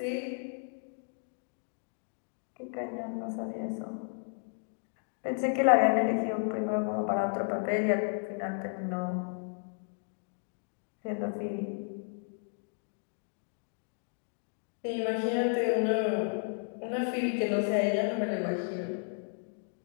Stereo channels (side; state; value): right; silent; 56 dB below the other